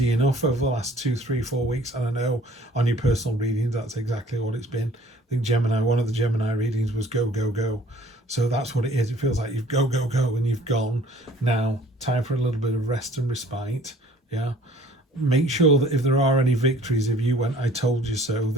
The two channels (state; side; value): normal; both; correlation 0.54